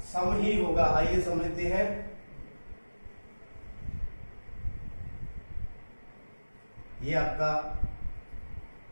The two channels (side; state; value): both; inverted; correlation -1.00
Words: सम ही होगा। आइए समझते हैं। ये आपका